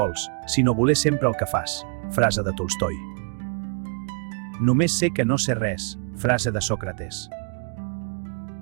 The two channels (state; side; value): quieter; left; 37.1 dB